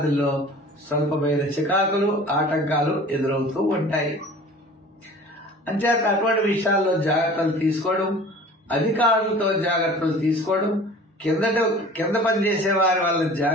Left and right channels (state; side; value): normal; both; correlation 0.44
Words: స్వల్పమైన చికాకులు, ఆటంకాలు ఎదురవుతూ ఉంటాయి. అంచేత అటువంటి విషయాల్లో జాగ్రత్తలు తీసుకోవడం, అధికారులతో జాగ్రత్తలు తీసుకోవడం, కింద పనిచేసే వారి వల్ల